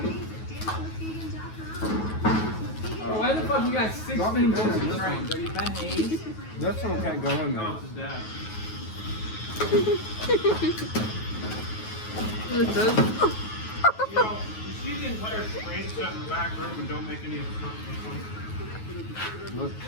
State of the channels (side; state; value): right; late; 9.3 ms